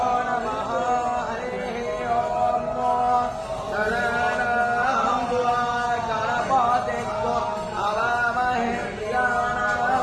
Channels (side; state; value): both; identical; correlation 1.00